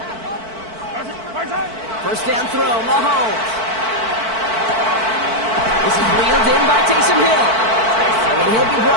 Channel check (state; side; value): late; left; 4.5 ms